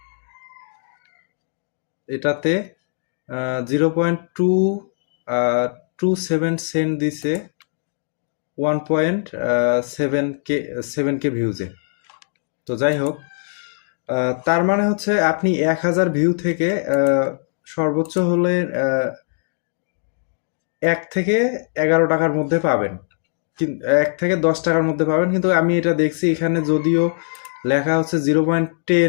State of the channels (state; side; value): silent; right; digital silence